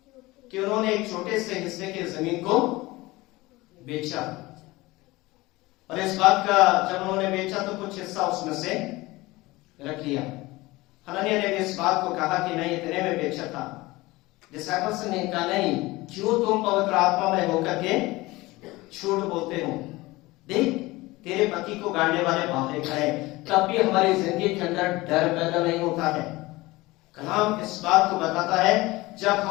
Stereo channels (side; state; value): right; quieter; 20.5 dB